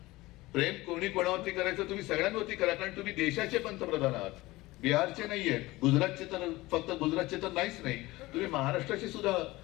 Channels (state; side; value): quieter; right; 19.7 dB